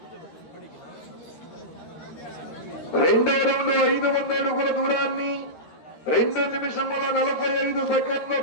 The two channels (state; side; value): late; right; 13 ms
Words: రెండో రౌండ్ 500 అడుగుల దూరాన్ని 2 నిమిషముల 45 సెకండ్లు